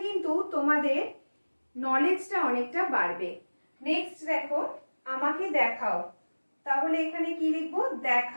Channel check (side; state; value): both; inverted; correlation -1.00